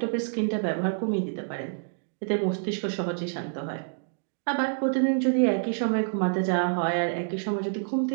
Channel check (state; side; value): silent; left; digital silence